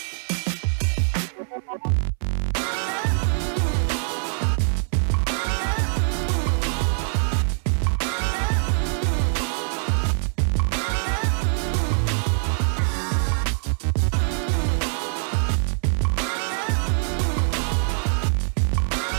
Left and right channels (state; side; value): silent; left; 63 dB below the other